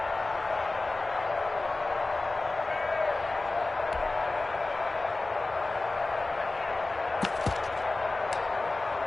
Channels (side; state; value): right; quieter; 3.2 dB